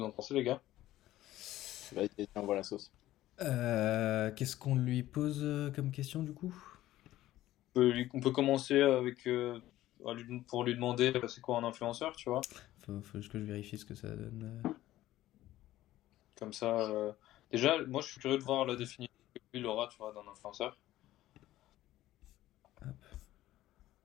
en pensez, les gars. Vas-y, tiens, voilà la sauce. Qu'est-ce qu'on lui pose comme question du coup? On peut commencer avec pour lui demander c'est quoi un influenceur, tu vois. Faut juste que je vérifie ce que ça donne. Comme ça, déjà, moi je suis curieux de voir la définition que lui il aura, tu vois, d'un influenceur. Hop.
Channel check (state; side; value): quieter; right; 14.9 dB